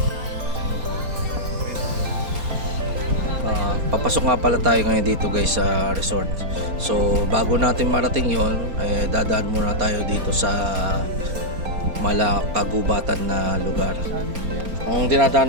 papasok nga pala tayo ngayon dito guys sa resort. So bago natin marating yon, dadaan muna tayo dito sa malakagubatan na lugar. Ang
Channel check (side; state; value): left; late; 4.3 ms